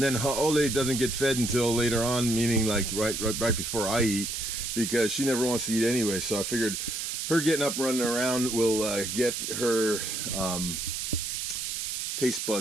then Ole doesn't get fed until later on, meaning like right before I eat, because she never wants to eat anyway. So I figured her getting up, running around will get her taste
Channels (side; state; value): right; noise; hiss, 3 dB below the sound